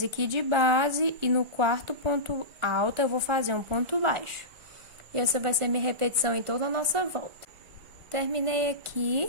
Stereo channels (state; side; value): late; left; 1.5 ms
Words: aqui de base e no quarto ponto alto eu vou fazer um ponto baixo. E essa vai ser minha repetição em toda a nossa volta. Terminei